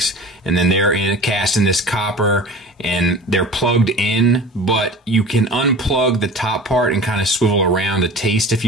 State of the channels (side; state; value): both; normal; correlation 0.38